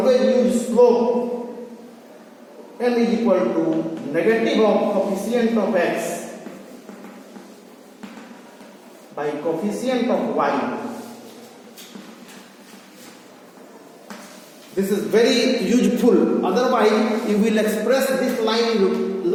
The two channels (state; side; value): identical; both; correlation 1.00